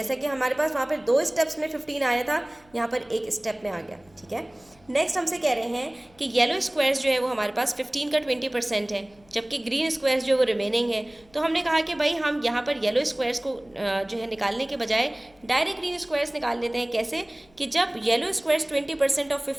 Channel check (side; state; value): left; noise; hum, 30 dB below the sound